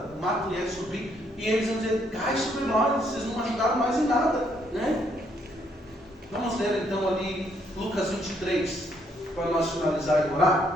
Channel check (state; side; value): normal; both; correlation 0.71